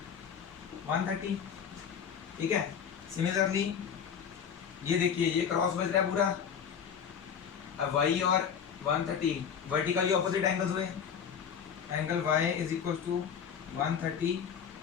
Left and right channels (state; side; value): quieter; right; 7.5 dB